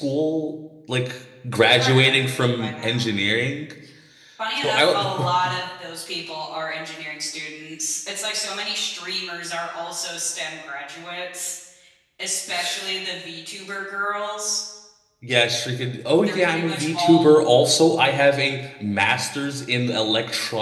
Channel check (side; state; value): both; identical; correlation 1.00